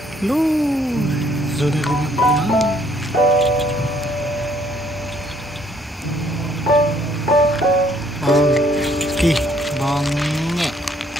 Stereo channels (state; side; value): normal; both; correlation 0.65